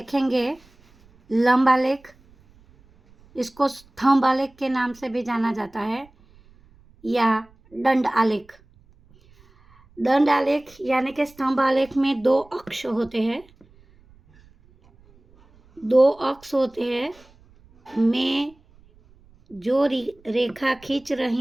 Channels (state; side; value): noise; right; rumble, 29 dB below the sound